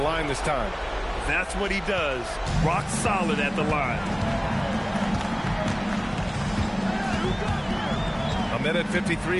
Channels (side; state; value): both; identical; correlation 1.00